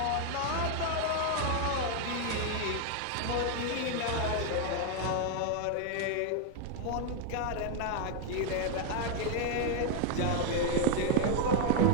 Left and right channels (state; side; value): different; both; correlation 0.01